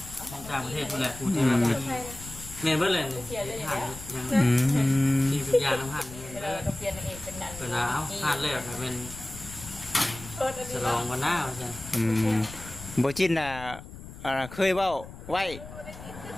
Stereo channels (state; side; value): noise; left; rumble, 14 dB below the sound